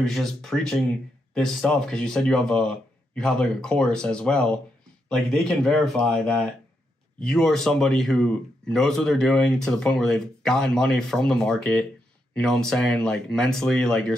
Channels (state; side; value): normal; both; correlation 0.82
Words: just preaching this stuff because you said you have like a course as well. Like, they can verify that you are somebody who knows what they're doing to the point where they've gotten money from the market. You know what I'm saying? Like, mentally, like, you're